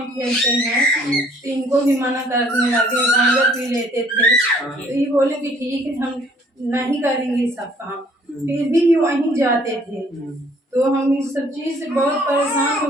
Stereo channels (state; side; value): normal; both; correlation 0.59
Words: खेलते हैं, तो इनको भी मना करने लगे, गांजा पी लेते थे। तो ये बोले कि ठीक है हम नहीं करेंगे सब काम, फिर भी वहीं जाते थे। तो हम इस सब चीज से बहुत परेशान हो